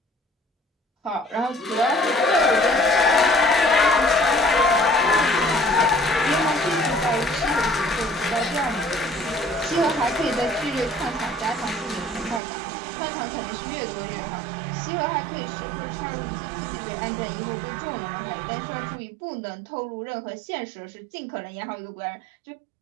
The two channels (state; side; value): drops out; left; at 12.4 s